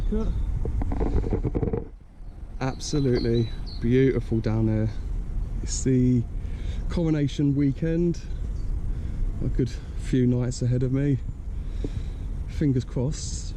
Absolutely beautiful down there. It's the coronation weekend. A good few nights ahead of me. Fingers crossed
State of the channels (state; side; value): identical; both; correlation 1.00